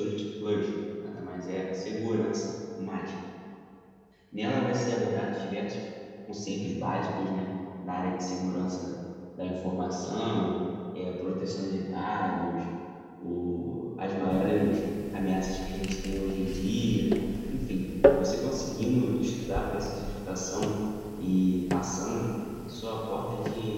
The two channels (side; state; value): both; identical; correlation 1.00